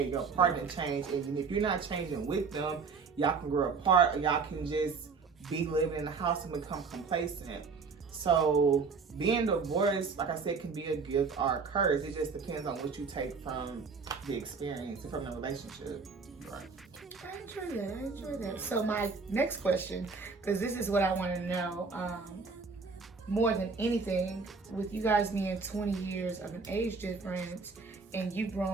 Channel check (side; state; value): left; quieter; 4.8 dB